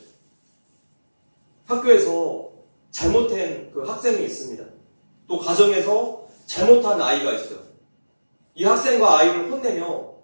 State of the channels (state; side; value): inverted; both; correlation -1.00